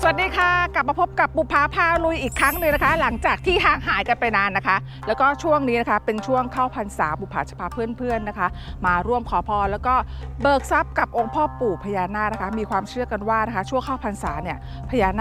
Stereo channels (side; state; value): both; identical; correlation 1.00